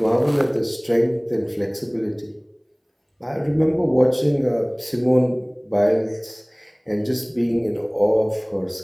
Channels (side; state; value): both; identical; correlation 1.00